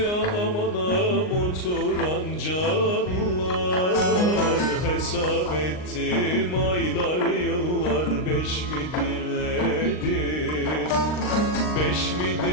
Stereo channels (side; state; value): right; late; 39 ms